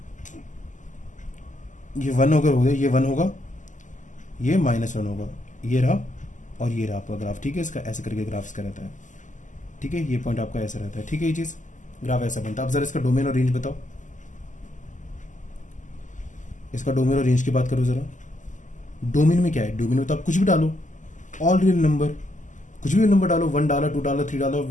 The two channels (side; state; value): right; late; 0.37 ms